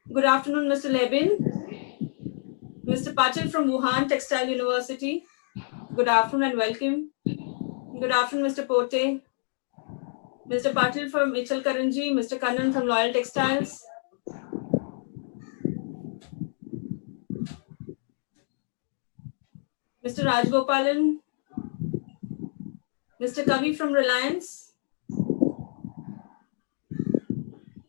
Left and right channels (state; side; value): silent; right; digital silence